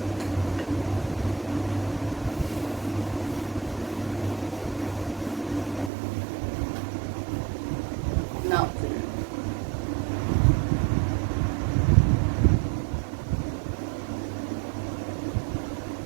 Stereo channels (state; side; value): drops out; left; at 5.9 s